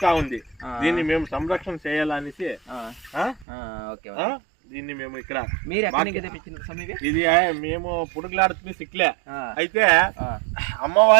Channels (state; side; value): drops out; left; at 3.5 s